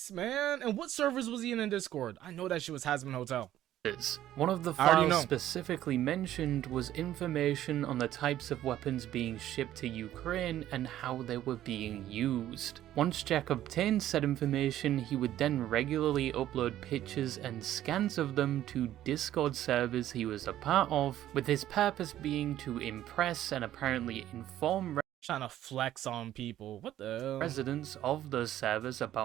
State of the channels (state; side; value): quieter; left; 12.7 dB